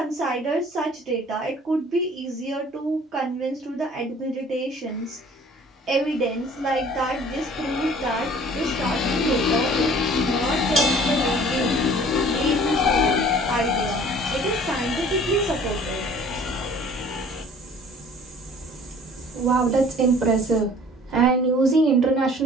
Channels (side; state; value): both; normal; correlation 0.50